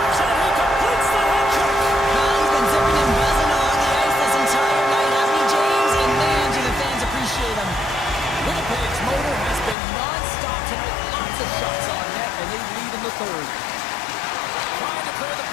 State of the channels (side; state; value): right; drops out; at 9.8 s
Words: And he completes the head check. He's been zipping and buzzing along the ice this entire night, hasn't he, James? And man, do the fans appreciate him. Winnipeg's motor has been non-stop tonight. Lots of shots on net, and they lead in the third. Trying to clear the